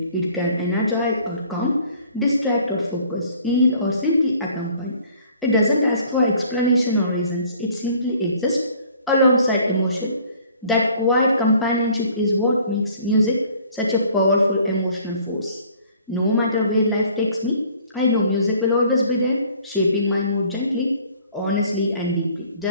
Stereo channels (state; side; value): inverted; both; correlation -0.55